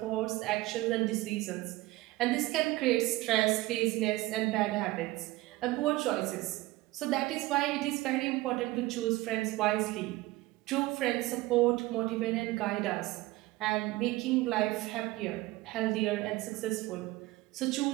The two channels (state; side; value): quieter; left; 18.9 dB